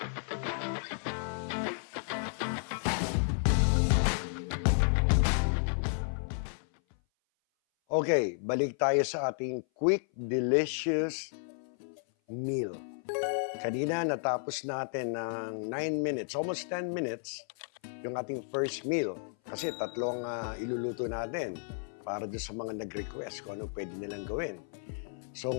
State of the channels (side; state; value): right; silent; 56 dB below the other